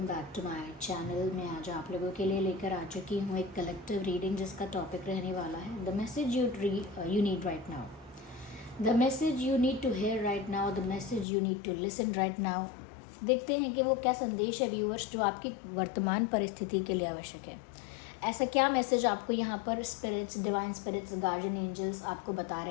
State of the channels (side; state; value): right; drops out; at 11.2 s